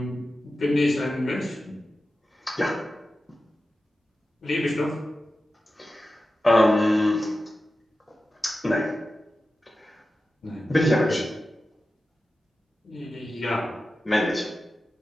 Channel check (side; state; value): both; normal; correlation 0.93